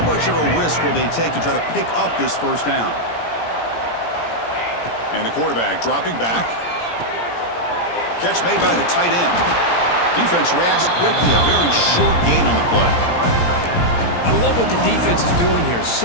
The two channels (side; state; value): right; late; 17 ms